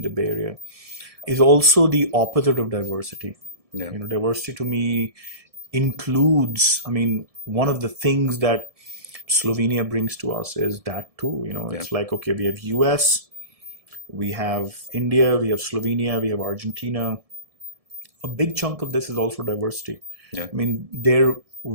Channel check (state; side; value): late; left; 1.7 ms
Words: the Bay Area is also the opposite of diversity. Yeah. Diversity to me includes, one of the things that Slovenia brings to us is that too. It's like, okay, we have US, we have India, we have Slovenia, we have Argentina. A big chunk of this is also diversity. Yeah. Their